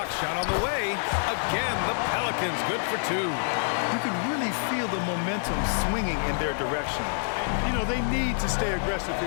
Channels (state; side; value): silent; right; 60 dB below the other